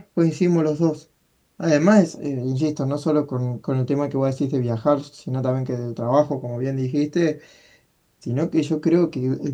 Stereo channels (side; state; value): both; identical; correlation 1.00